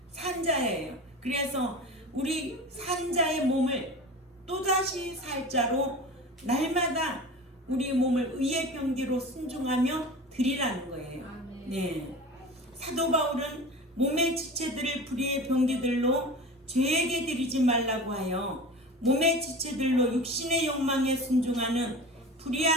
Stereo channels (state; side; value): normal; both; correlation 0.34